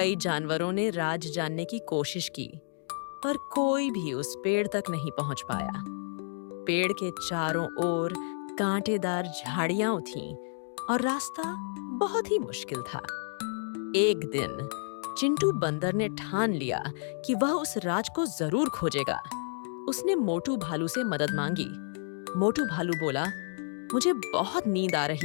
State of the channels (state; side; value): silent; right; digital silence